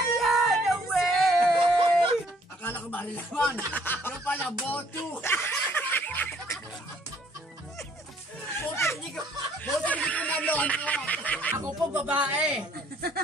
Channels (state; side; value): normal; both; correlation 0.62